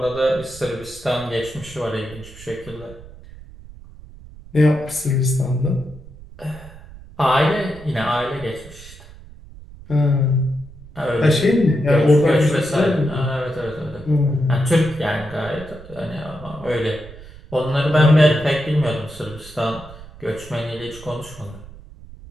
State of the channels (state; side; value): noise; right; rumble, 18 dB below the sound